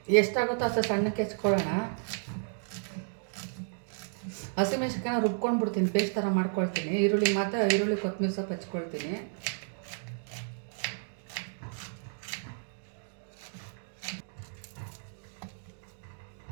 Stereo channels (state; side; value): silent; left; digital silence